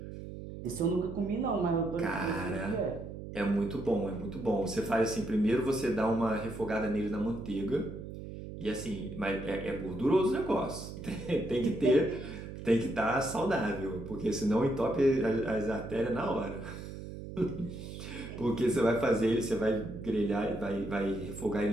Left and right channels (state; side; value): noise; right; hum, 10 dB below the sound